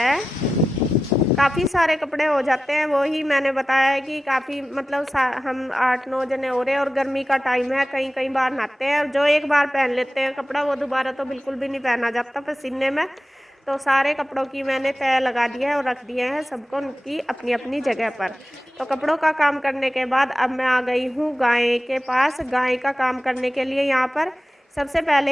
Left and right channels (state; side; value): normal; both; correlation 0.94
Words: काफ़ी सारे कपड़े हो जाते हैं, वो ही मैंने बताया है कि काफ़ी मतलब हम 8-9 जने हो रहे हैं, और गर्मी का टाइम है, कई बार नहाते हैं, और जो एक बार पहन लेते हैं कपड़ा वो दोबारा तो बिल्कुल भी नहीं पहना जाता पसीने में। तो सारे कपड़ों की मैंने तय लगा दिया है और रख दिए हैं सबको उनकी अपनी अपनी जगह पर। तो कपड़ों का काम करने के बाद अब मैं आ गई हूँ गाय के पास। गाय का काम करने के लिए यहाँ पर सबसे